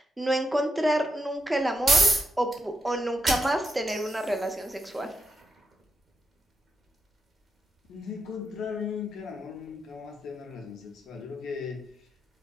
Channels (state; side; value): normal; both; correlation 0.81